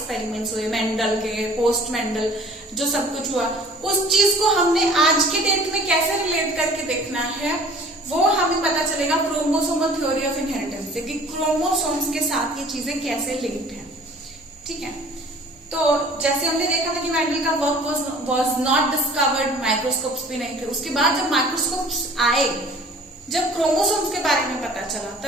हुए मेंडल के, पोस्ट मेंडल, जो सब कुछ हुआ, उस चीज को हमने आज के डेट में कैसे रिलेट करके देखना है, वो हमें पता चलेगा क्रोमोसोमल थ्योरी ऑफ इनहेरिटेंस से, कि क्रोमोसोम्स के साथ ये चीजें कैसे लिंक्ड है। ठीक है, तो जैसे हमने देखा था कि मेंडल का work was not discovered, microscopes भी नहीं थे। उसके बाद जब माइक्रोस्कोप्स आए, जब क्रोमोसोम्स के बारे में पता चला,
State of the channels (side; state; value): both; normal; correlation 0.49